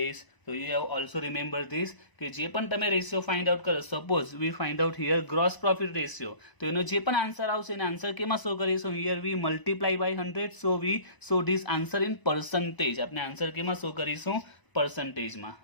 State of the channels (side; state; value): right; late; 1.0 ms